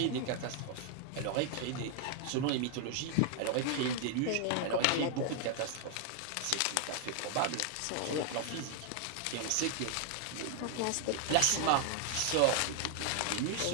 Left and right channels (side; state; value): both; different; correlation 0.00